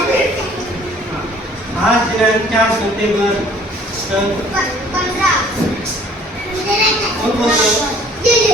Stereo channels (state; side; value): normal; both; correlation 0.55